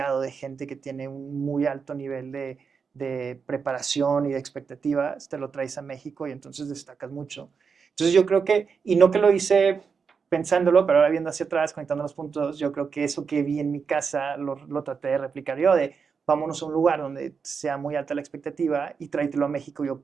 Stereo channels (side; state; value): left; quieter; 5.7 dB